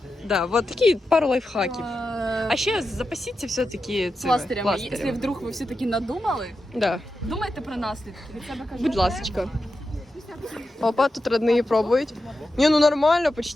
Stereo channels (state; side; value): normal; both; correlation 0.90